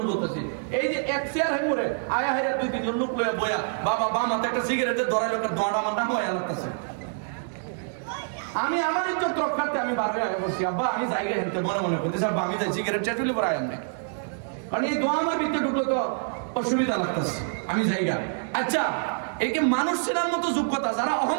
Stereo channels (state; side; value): silent; left; digital silence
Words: বলতেছি এই যে এক চেয়ার হয়ে মরে আয়া হাইরা দুই তিনজন লোক লইয়া বয়া বাবা বাম হাতে একটা সিগারেটের ধরাই লোকের ধোঁয়াটা আমার নাম হয়ে লাগতেছে আমি আমার ইজ্জত রক্ষার্থে আমি বার হয়ে আগে বলছি আব্বা আমি জায়গায় হেঁটে মনে করতেছি আব্বা আমি যাই সিগারেট চেটুলি পরে আয়াম নাই কারণ এই দোয়া আমার ভিতরে ঢুকলো তো অসুবিধা লাগতেছে আমি জায়গা আচ্ছা এই কি মানুষ চেনার মতো যোগ্যতা যারা